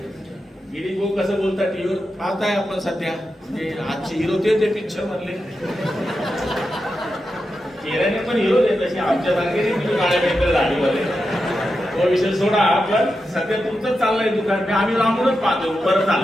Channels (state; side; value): normal; both; correlation 0.89